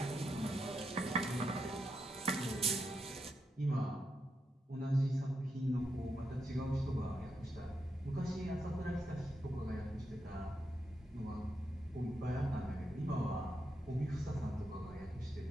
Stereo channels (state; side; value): normal; both; correlation 0.84